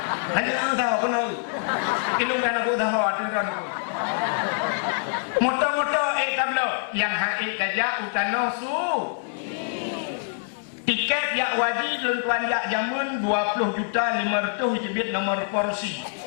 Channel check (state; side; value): silent; right; 62 dB below the other